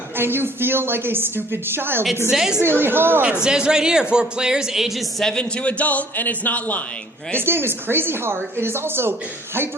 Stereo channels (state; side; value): normal; both; correlation 0.55